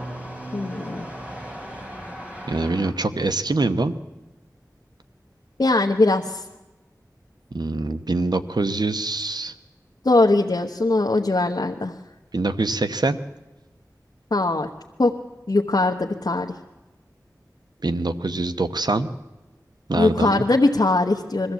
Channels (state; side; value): normal; both; correlation 0.78